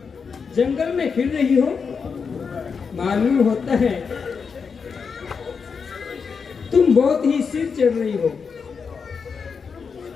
जंगल में फिर रही हो? मालूम होता है तुम बहुत ही सिर चढ़ रही हो।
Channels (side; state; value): right; quieter; 5.7 dB